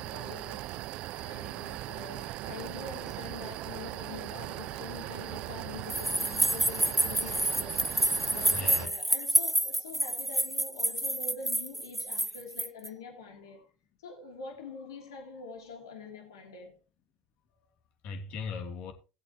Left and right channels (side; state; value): both; normal; correlation 0.73